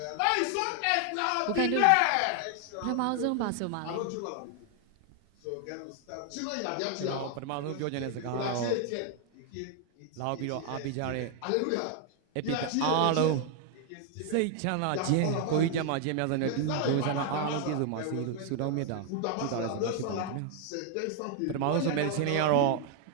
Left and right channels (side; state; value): both; different; correlation 0.00